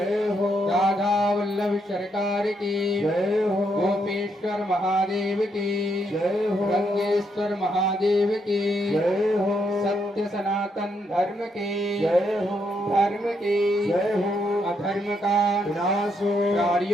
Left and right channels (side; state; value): both; normal; correlation 0.77